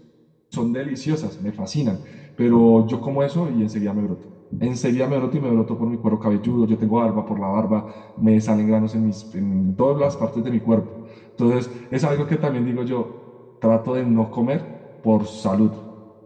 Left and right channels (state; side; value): identical; both; correlation 1.00